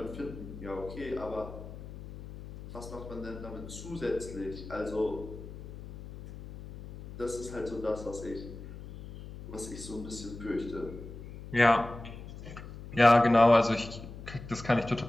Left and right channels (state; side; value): noise; left; hum, 13 dB below the sound